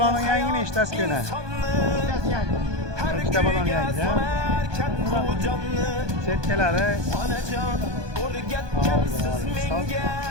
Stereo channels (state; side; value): late; left; 1.2 ms